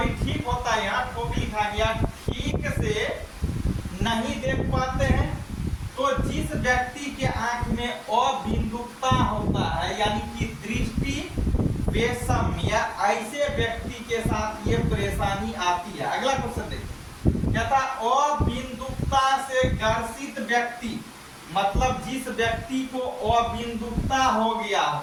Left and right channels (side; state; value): both; identical; correlation 1.00